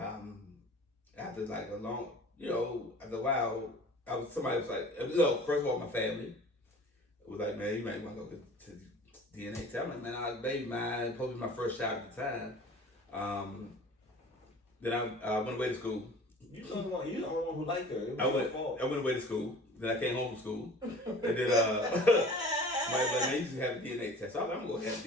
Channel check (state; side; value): normal; both; correlation 0.44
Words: like a long, after a while, somebody was like, first of all, my family was like, "Man, you might want to go to DNA test." I'm like, "Man, I was a baby mine, supposed to be my first child at the time." Then I went away to school. you're the only one who liked her. It was I your went fault. away to school. Then I came home from school. And then somebody was like, "Man, you should have a DNA test." So I was like, "I'm gonna have